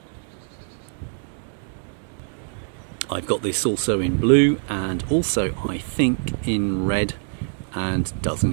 I've got this also in blue and also I think in red, and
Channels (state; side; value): silent; left; digital silence